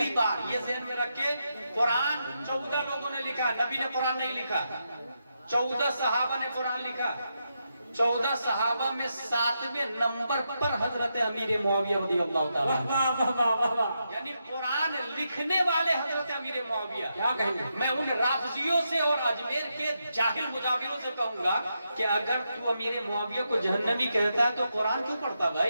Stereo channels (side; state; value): both; inverted; correlation -0.84